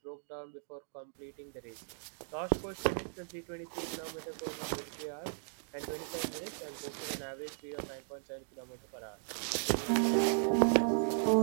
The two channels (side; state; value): left; silent; digital silence